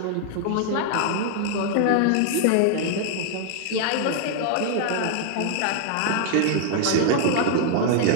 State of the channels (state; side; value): different; both; correlation 0.00